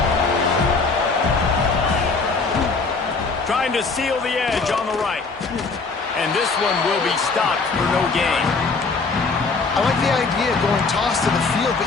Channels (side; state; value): right; quieter; 4.2 dB